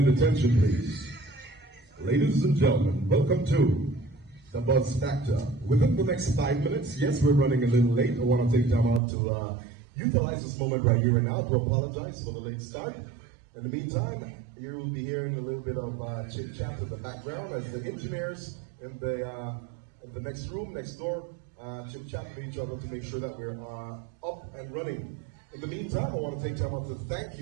attention, please. Ladies and gentlemen, welcome to the buzz factor. Within the next 5 minutes, yes, we're running a little late. I want to take time out to utilize this moment right here and now to apologize for the late start. In the meantime, you will be hearing a little bit of chit chat in the background as the engineers in the next room, next door, chit chat with each other to make sure that we're up and running. In the meantime, I want to take time out to thank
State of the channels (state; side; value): drops out; left; at 9.0 s